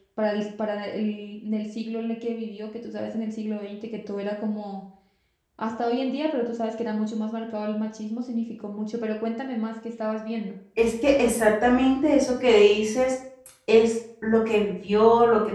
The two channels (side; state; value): both; identical; correlation 1.00